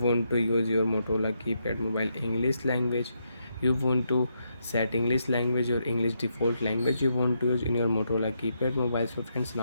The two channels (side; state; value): both; inverted; correlation -0.80